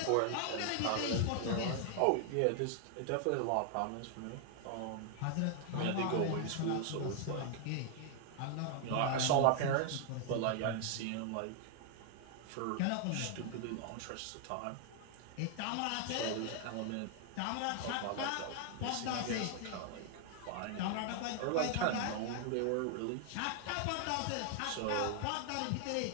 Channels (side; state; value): both; different; correlation 0.00